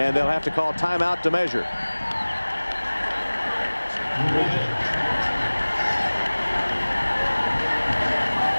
they'll have to call timeout to measure.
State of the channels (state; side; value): inverted; both; correlation -1.00